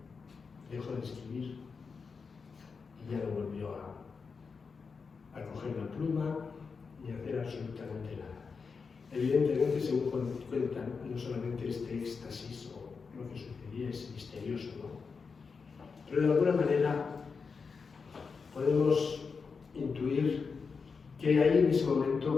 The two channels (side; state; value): right; quieter; 5.2 dB